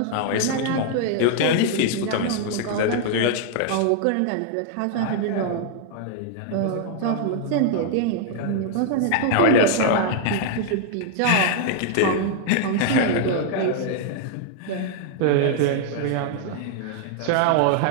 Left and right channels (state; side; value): different; both; correlation 0.00